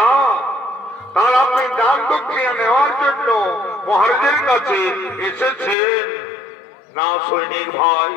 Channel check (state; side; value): drops out; right; at 5.8 s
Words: তার আপনি দান দক্ষিণা নেওয়ার জন্য মহারাজের কাছে এসেছেন। না সৈনিক ভাই,